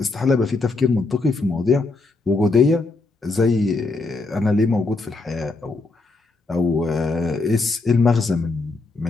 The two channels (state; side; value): quieter; right; 3.5 dB